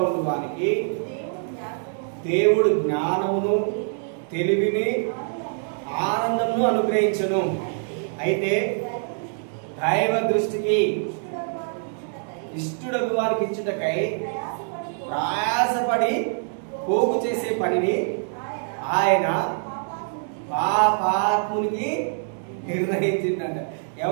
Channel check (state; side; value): silent; left; 62 dB below the other